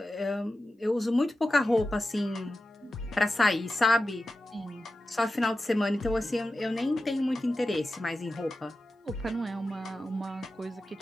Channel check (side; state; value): both; normal; correlation 0.93